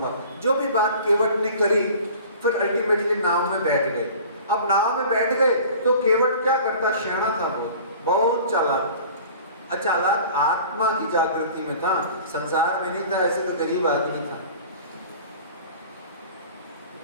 जो भी बात केवट ने करी, फिर अल्टीमेटली नाव में बैठ गए। अब नाव में बैठ गए तो केवट क्या करता? शैना था, बहुत चालाक, अचालाक आत्मा की जागृति में था, संसार में नहीं था। ऐसे तो गरीब आदमी था।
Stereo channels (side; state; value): both; inverted; correlation -0.44